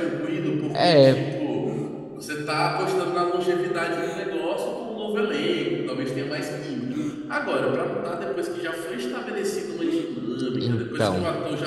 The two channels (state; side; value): identical; both; correlation 1.00